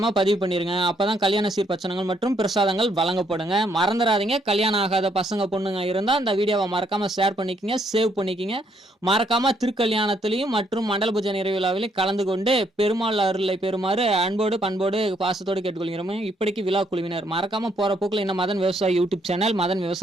பதிவு பண்ணிருங்க. அப்பதான் கல்யாண சீர்பச்சனங்கள் மற்றும் பிரசாதங்கள் வழங்கப்படுங்க. மறந்துடாதீங்க. கல்யாணம் ஆகாத பசங்க பொண்ணுங்க இருந்தா இந்த வீடியோவை மறக்காம ஷேர் பண்ணிக்கங்க, சேவ் பண்ணிக்கங்க. மறக்காம திருக்கல்யாணத்திலையும் மற்றும் மண்டல பூஜை நிறைவு விழாவிலையும் கலந்து கொண்டு பெருமாள் அருளை பெறுமாறு அன்போடு பண்போடு பாசத்தோடு கேட்டுக்கொள்கிறோம். இப்படிக்கு விழா குழுவினர் மறக்காம போற போக்குல இந்த மதன் விவசாயி யூடியூப் சேனல், மதன்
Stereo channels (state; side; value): normal; both; correlation 0.71